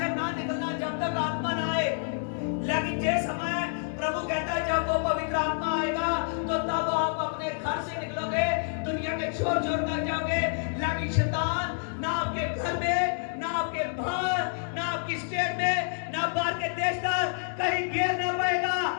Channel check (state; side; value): silent; right; digital silence